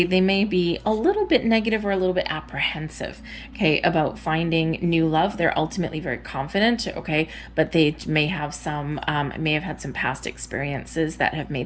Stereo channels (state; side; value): identical; both; correlation 1.00